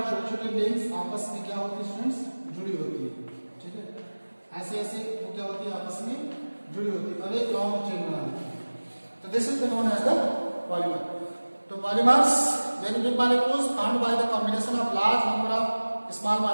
छोटे छोटे लिंक्स आपस में क्या होती है स्टूडेंट्स? जुड़ी होती है. ठीक है, ऐसे ऐसे वो क्या होती है? आपस में जुड़ी होती है और एक लॉन्ग चेन बना देती है. तो this is known as the polymer. तो polymers, very big molecules formed by the combination of large number of small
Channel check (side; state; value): both; inverted; correlation -1.00